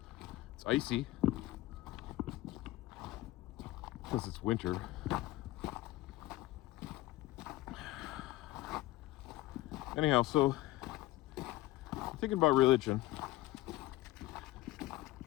It's icy because it's winter. Anyhow, so I'm thinking about religion.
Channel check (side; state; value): right; quieter; 17.4 dB